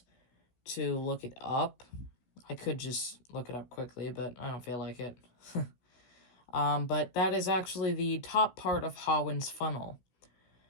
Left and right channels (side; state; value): right; late; 16 ms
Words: to look it up. I could just look it up quickly, but I don't feel like it. But that is actually the top part of Hawin's funnel.